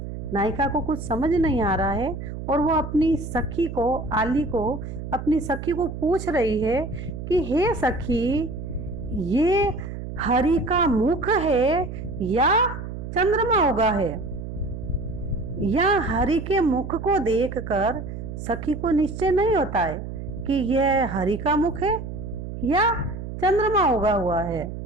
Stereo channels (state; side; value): noise; right; hum, 8 dB below the sound